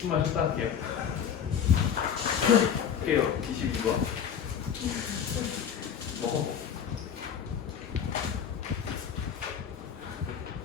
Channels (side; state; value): right; quieter; 8.1 dB